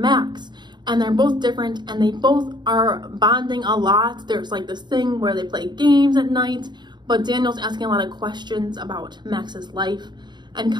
and they're both different, and they both are bonding a lot. There's like this thing where they play games at night, but Daniel's asking a lot of questions about Max's life and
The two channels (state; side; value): late; left; 0.21 ms